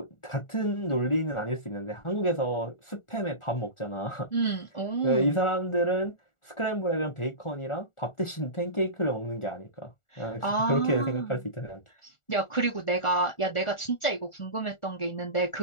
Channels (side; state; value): right; late; 1.4 ms